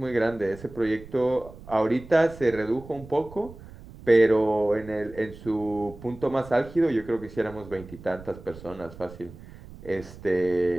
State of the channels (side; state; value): right; noise; rumble, 17 dB below the sound